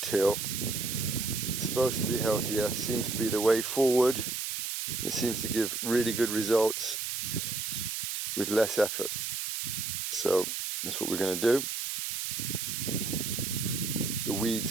It's supposed to be healthier, seems to be the way forward It seems to give really good results with less effort. So that's what we're going to do. The weeds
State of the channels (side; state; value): right; noise; hiss, 3 dB below the sound